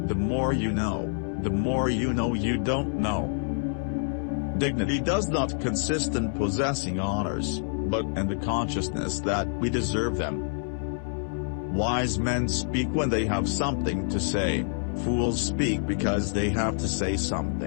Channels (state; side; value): silent; right; 60 dB below the other